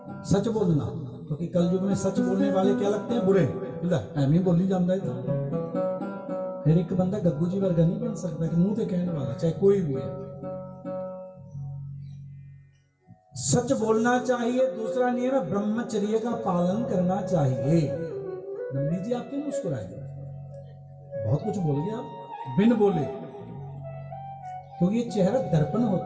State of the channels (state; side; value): identical; both; correlation 1.00